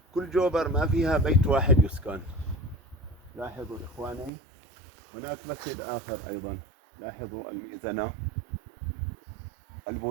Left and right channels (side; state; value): left; drops out; at 4.3 s